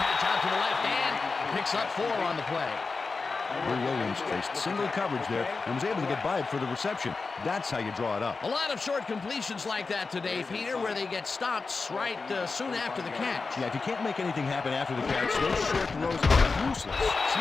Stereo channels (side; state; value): right; quieter; 4.2 dB